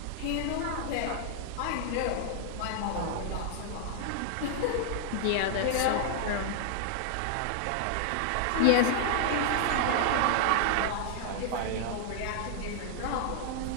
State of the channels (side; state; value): both; different; correlation -0.01